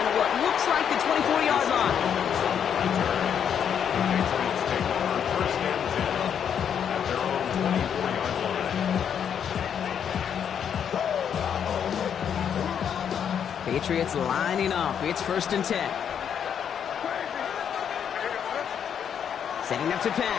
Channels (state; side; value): quieter; right; 8.3 dB